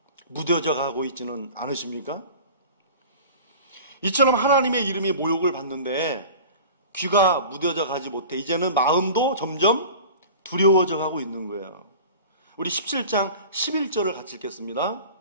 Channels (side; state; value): both; inverted; correlation -0.39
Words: 무뎌져 가고 있지는 않으십니까? 이처럼 하나님의 이름이 모욕을 받는데 귀가 무뎌져 가지 못해 이제는 마음도 점점 두려워져 가고 있는 거예요. 우리 17장 11절을 같이 읽겠습니다.